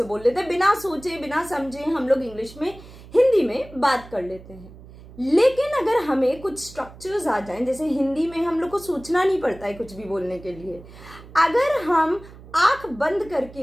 बोल लेते हैं, बिना सोचे बिना समझे हम लोग इंग्लिश में हिंदी में बात कर लेते हैं। लेकिन अगर हमें कुछ स्ट्रक्चर्स आ जाएं, जैसे हिंदी में हम लोग को सोचना नहीं पड़ता है कुछ भी बोलने के लिए, अगर हम आंख बंद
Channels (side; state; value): right; noise; hum, 19 dB below the sound